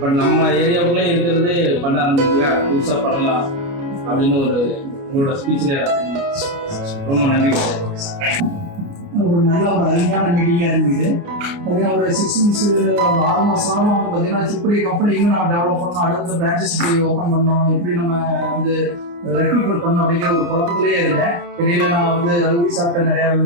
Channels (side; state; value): left; late; 29 ms